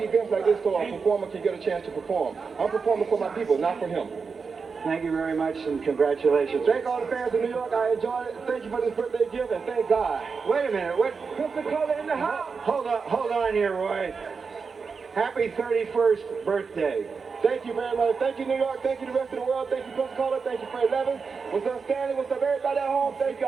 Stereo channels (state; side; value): quieter; left; 5.2 dB